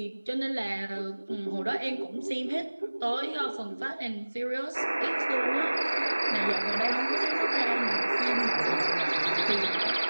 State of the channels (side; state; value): both; inverted; correlation -1.00